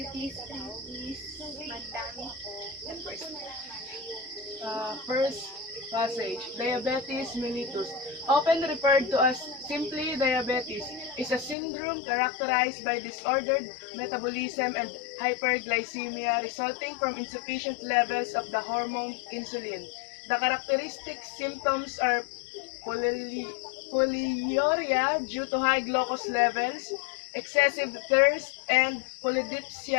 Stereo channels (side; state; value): right; drops out; at 11.6 s